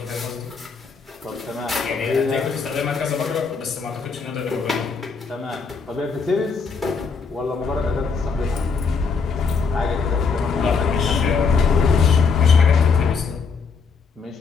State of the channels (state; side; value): quieter; right; 5.2 dB